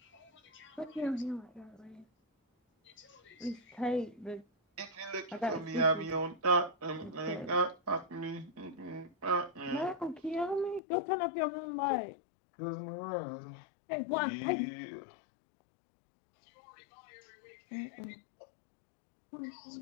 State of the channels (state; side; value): drops out; right; at 10.8 s